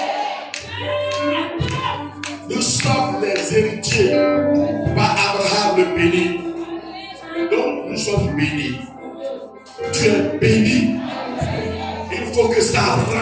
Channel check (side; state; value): both; identical; correlation 1.00